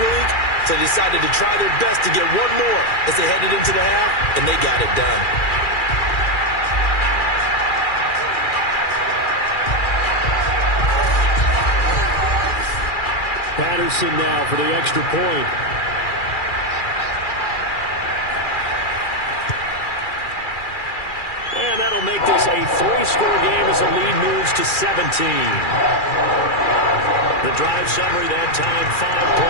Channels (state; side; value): late; right; 2.4 ms